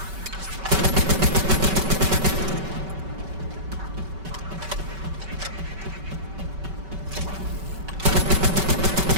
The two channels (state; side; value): late; left; 5.3 ms